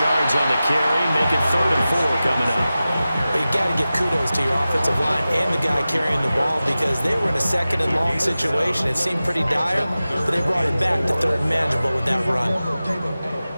yards on the carry. Make it 3rd and 4 coming up. But you got to give kudos to your offensive line and the guy carrying the ball because they were in a 2nd and long situation. It seemed pretty dire, but they brought it back to 3rd and manageable with that run.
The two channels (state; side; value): inverted; both; correlation -0.95